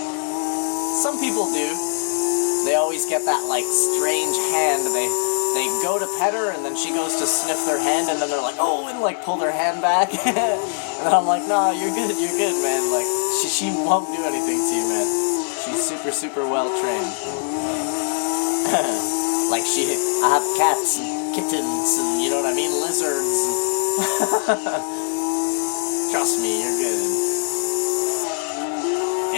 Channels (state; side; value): silent; right; digital silence